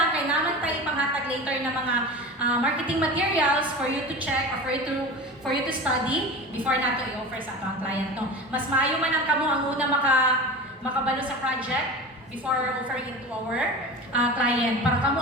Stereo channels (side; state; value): both; normal; correlation 0.31